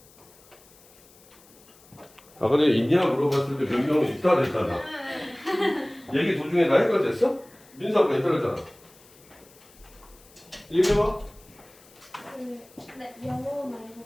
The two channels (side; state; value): left; noise; hiss, 26 dB below the sound